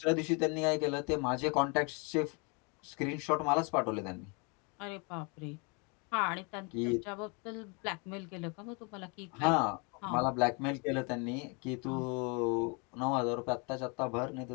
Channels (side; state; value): right; quieter; 32.6 dB